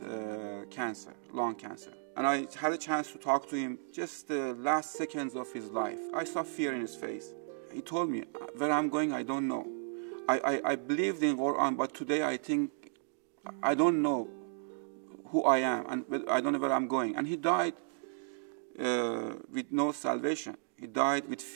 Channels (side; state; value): left; silent; digital silence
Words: cancer, lung cancer. And I had a chance to talk to him just the last seconds of his life. I saw fear in his face. He told me, where I'm going, I don't know. I believed in Quran, but today I think I don't know who I am, and I don't know where I'm going. And he died with no salvation. He died with